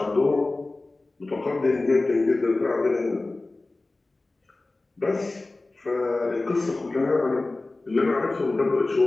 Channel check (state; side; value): quieter; right; 3.1 dB